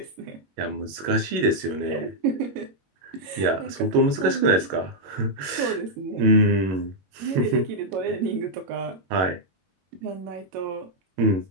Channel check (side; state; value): left; late; 21 ms